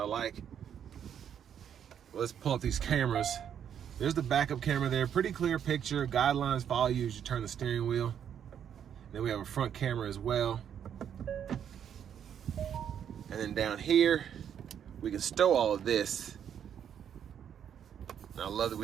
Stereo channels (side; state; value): left; quieter; 8.8 dB